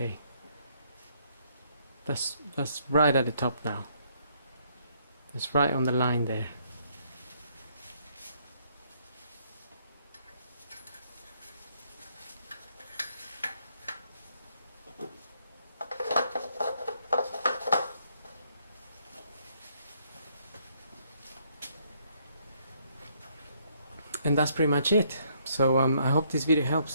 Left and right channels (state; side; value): inverted; both; correlation -0.69